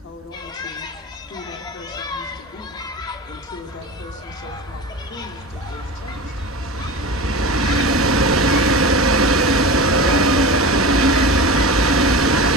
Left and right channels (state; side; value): normal; both; correlation 0.30